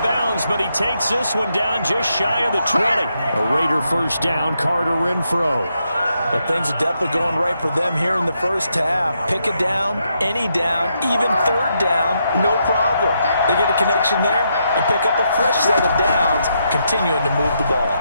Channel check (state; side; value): inverted; both; correlation -0.80